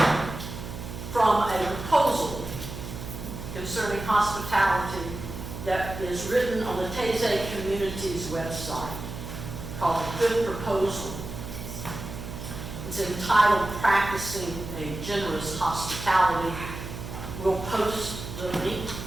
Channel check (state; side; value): noise; right; hum, 9 dB below the sound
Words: from a proposal concerning hospitality that is written on the Taizé Community's website called The Good Proposal. It's entitled Practicing a Generous Hospitality. We'll post the link